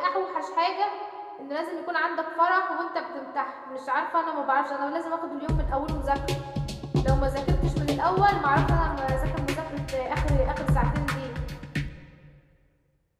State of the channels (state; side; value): identical; both; correlation 1.00